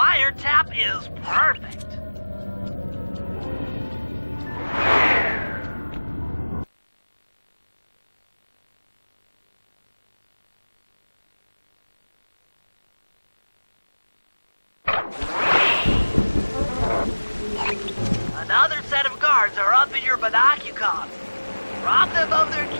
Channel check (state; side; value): inverted; both; correlation -1.00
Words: is perfect. Another set of guards are up in your binocucom. Rob them of their